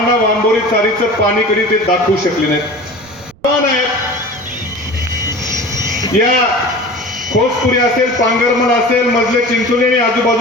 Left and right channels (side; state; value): right; noise; rumble, 27 dB below the sound